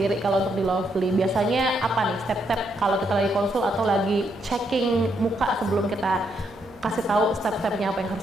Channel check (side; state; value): both; normal; correlation 0.77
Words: kalau untuk di Lovely, biasanya apa nih step-step kalau kita lagi konsul atau lagi checking muka sebelum kita kasih tahu step-stepnya apa yang